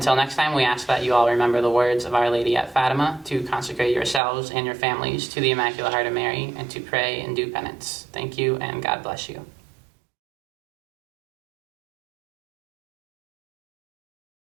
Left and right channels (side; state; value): left; drops out; at 4.2 s